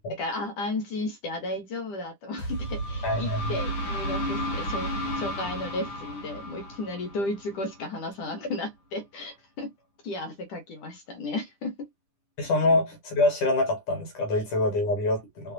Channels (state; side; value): late; right; 10 ms